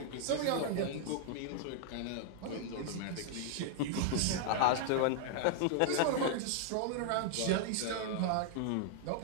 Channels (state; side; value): different; both; correlation -0.01